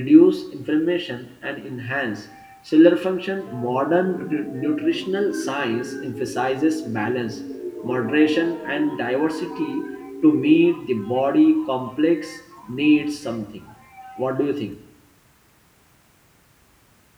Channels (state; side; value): identical; both; correlation 1.00